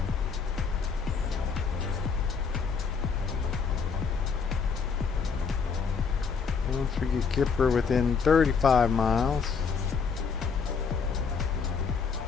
Once we get Kipper within 35 miles.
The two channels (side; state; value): right; quieter; 5.7 dB